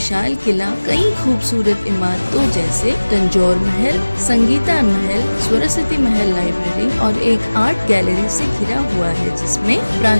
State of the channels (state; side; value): inverted; both; correlation -1.00